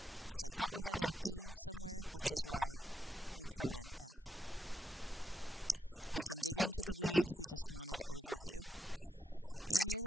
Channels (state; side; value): normal; both; correlation 0.82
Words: because I thought we had an E somewhere, which is why we threw in F. We can dig into the weeds, we just wanted overview.